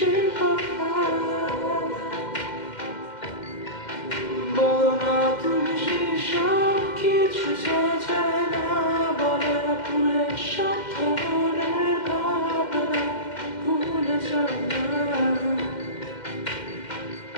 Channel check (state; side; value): late; right; 2.1 ms